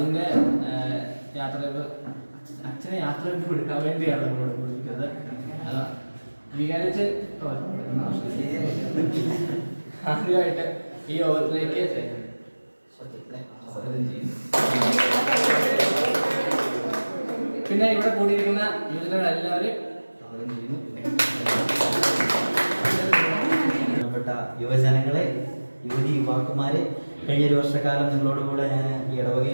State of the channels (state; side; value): inverted; both; correlation -1.00